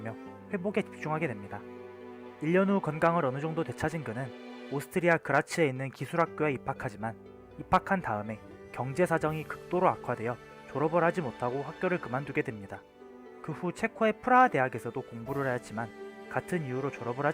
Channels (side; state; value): both; identical; correlation 1.00